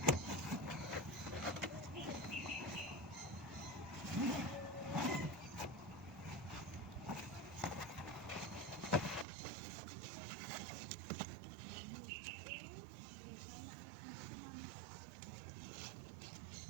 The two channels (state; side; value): drops out; left; at 9.2 s